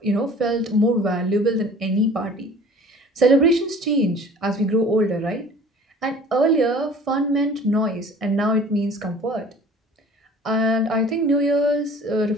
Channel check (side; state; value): both; normal; correlation 0.47